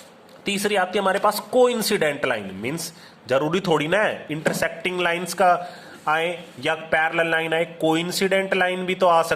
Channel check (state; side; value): identical; both; correlation 1.00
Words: तीसरी आती है हमारे पास कोइंसिडेंट लाइन, मींस जरूरी थोड़ी ना है इंटरसेक्टिंग लाइंस का आए या पैरेलल लाइन आए, कोइंसिडेंट लाइन भी तो आ